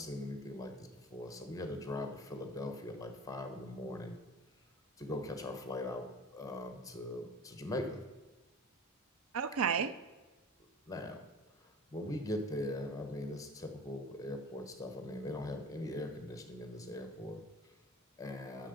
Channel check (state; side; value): normal; both; correlation 0.38